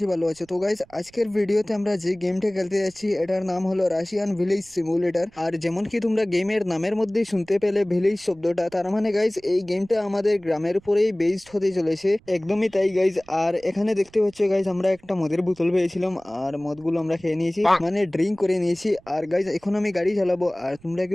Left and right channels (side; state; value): right; noise; rumble, 28 dB below the sound